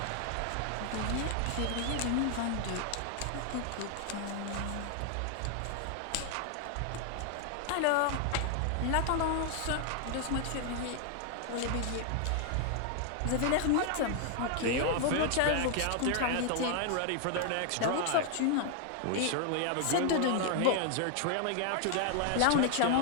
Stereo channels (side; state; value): both; different; correlation 0.00